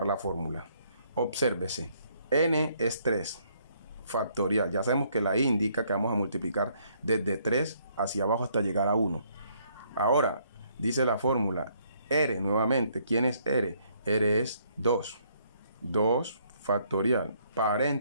la fórmula. Obsérvese. N es 3. Factorial. Ya sabemos que la I indica que vamos a multiplicar desde 3 hacia abajo hasta llegar a 1. Ahora, dice la fórmula, R nuevamente. ¿Quién es R? R es 2. 2 factorial,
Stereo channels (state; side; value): inverted; both; correlation -0.68